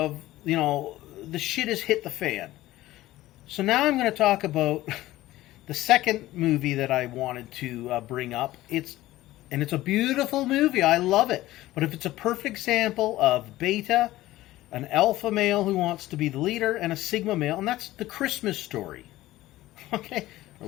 the shit has hit the fan. So now I'm going to talk about the second movie that I wanted to bring up. It's a beautiful movie. I love it. But if it's a perfect example of beta, an alpha male who wants to be the leader, and a sigma male, and that's The Christmas Story. Okay?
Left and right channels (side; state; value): right; quieter; 16.4 dB